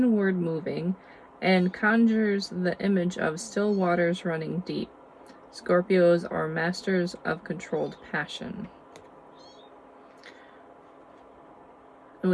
moving and conjures the image of still waters running deep. Scorpios are masters of controlled passion.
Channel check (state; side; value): identical; both; correlation 1.00